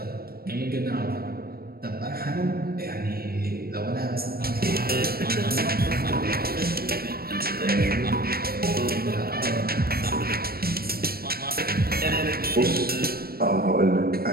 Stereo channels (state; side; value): late; left; 0.44 ms